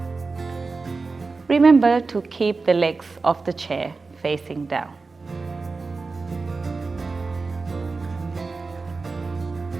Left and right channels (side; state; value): left; quieter; 4.0 dB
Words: Remember to keep the legs of the chair facing down.